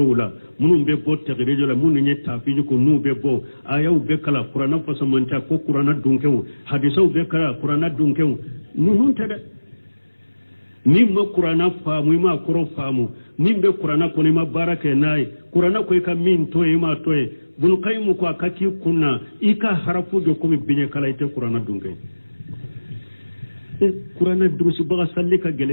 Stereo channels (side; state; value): both; inverted; correlation -1.00